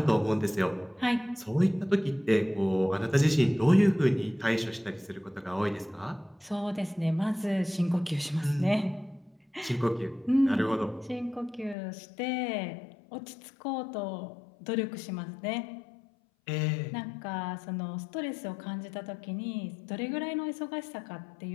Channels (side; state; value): right; drops out; at 11.8 s